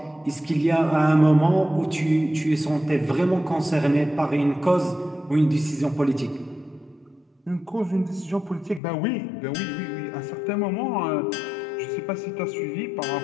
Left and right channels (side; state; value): right; drops out; at 8.8 s